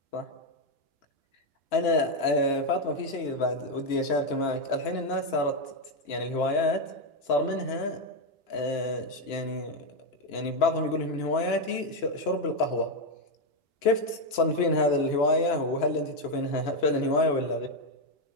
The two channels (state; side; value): late; right; 2.9 ms